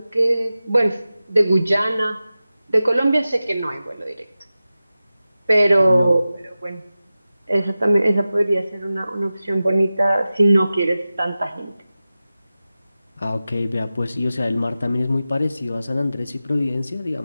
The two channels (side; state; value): both; inverted; correlation -0.95